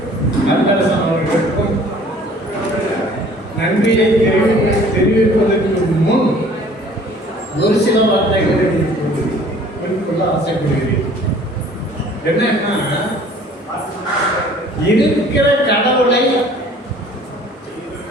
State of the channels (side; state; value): both; normal; correlation 0.52